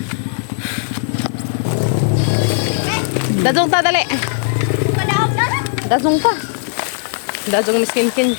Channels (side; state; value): right; silent; digital silence